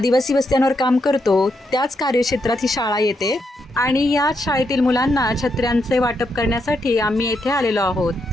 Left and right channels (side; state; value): both; normal; correlation 0.81